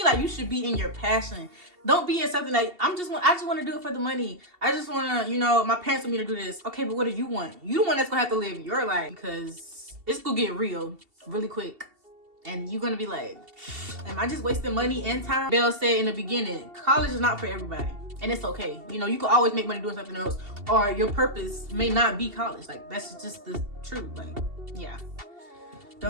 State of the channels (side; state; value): left; late; 2.7 ms